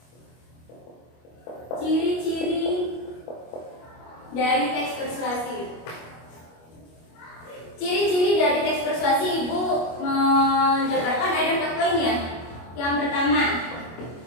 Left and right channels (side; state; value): right; late; 25 ms